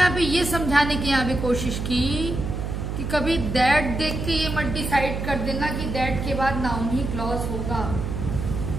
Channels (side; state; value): right; noise; hum, 4 dB below the sound